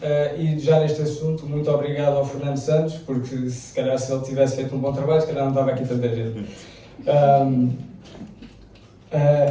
E já neste assunto, muito obrigado ao Fernando Santos, porque se calhar se ele tivesse feito um bom trabalho, se calhar não estava aqui tanta gente.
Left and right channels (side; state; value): both; identical; correlation 1.00